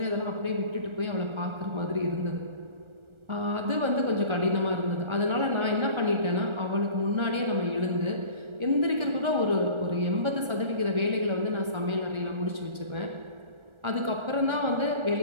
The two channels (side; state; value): left; late; 1.4 ms